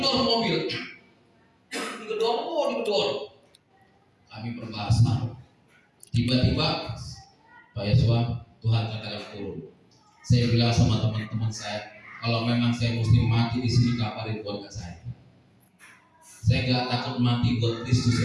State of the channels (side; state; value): both; identical; correlation 1.00